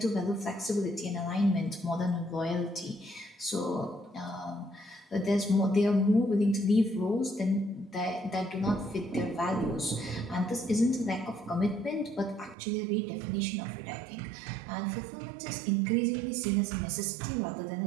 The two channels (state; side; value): drops out; left; at 12.6 s